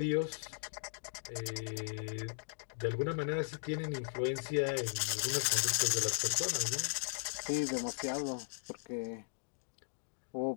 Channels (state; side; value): silent; right; digital silence